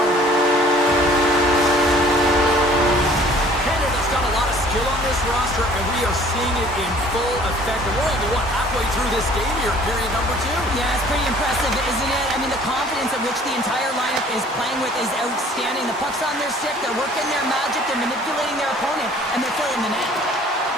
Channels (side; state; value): both; normal; correlation 0.53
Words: Canada's got a lot of skill on this roster, and we are seeing it in full effect. And we're only, halfway through this game here in period number 2? Yeah, it's pretty impressive, isn't it? I mean, mean, the confidence at which the entire lineup is playing with is outstanding. The puck's on their stick, they're working their magic, they're manipulating their opponent, and they're filling the net.